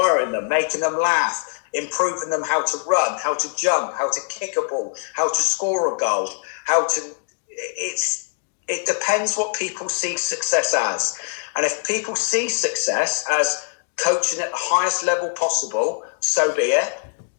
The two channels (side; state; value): right; silent; digital silence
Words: them, making them laugh, improving them how to run, how to jump, how to kick a ball, how to score a goal, it depends what people see success as. And if people see success as coaching at the highest level possible, so be it.